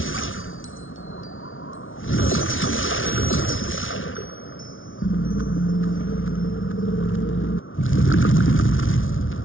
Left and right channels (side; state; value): right; late; 0.58 ms